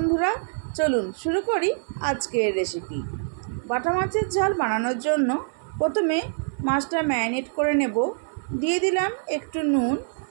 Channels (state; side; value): silent; left; 62 dB below the other